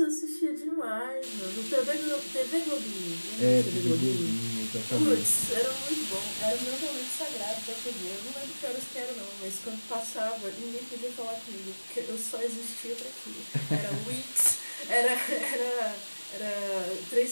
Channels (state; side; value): inverted; both; correlation -1.00